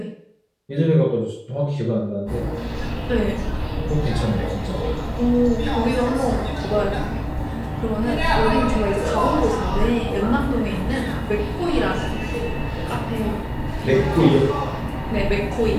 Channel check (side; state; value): both; identical; correlation 1.00